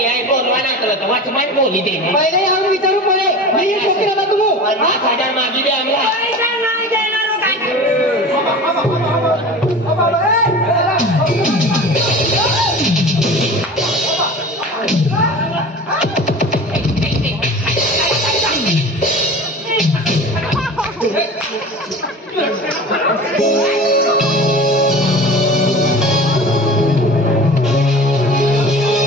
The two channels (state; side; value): normal; both; correlation 0.36